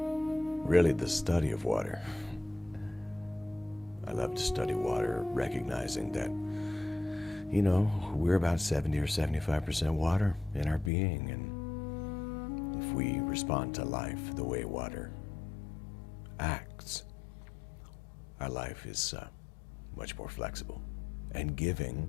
really the study of water. I love to study water, recognizing that we're about 70 or 75% water in our being, and if we respond to life the way water acts, our life is much more flexible and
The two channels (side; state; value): right; drops out; at 10.9 s